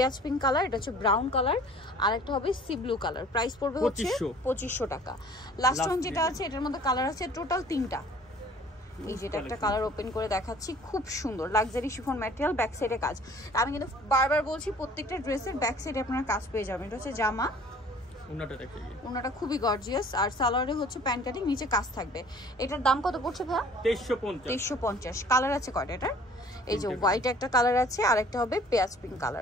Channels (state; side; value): normal; both; correlation 0.51